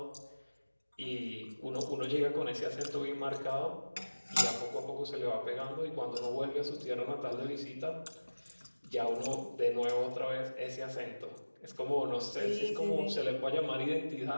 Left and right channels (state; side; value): inverted; both; correlation -1.00